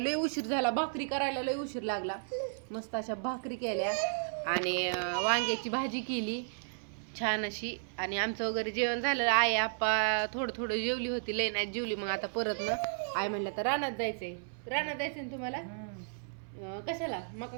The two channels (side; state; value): left; silent; 55 dB below the other